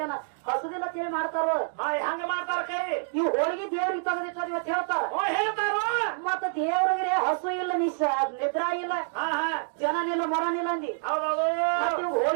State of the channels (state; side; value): silent; left; digital silence